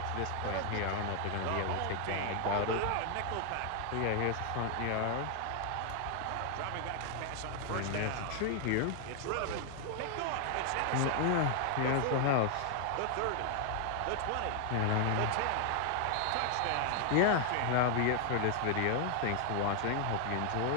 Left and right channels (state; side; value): different; both; correlation 0.00